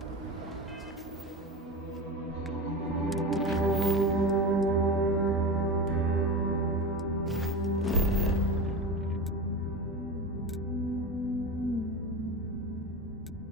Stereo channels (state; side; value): normal; both; correlation 0.25